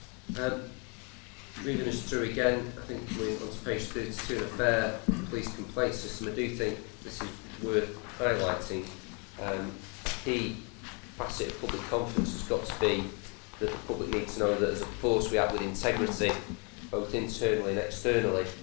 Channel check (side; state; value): right; quieter; 34.4 dB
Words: Moving us through again, I think we're on to page 32, the fair police complaint system. I do think this is worth highlighting. Key facet of public confidence has got to be that the public needs to know that as a force we act with integrity, both internally and externally.